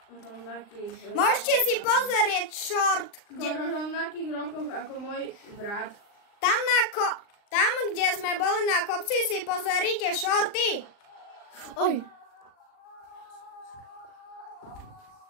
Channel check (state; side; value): late; right; 39 ms